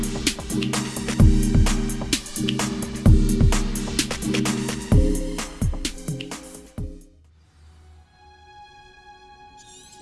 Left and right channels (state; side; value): identical; both; correlation 1.00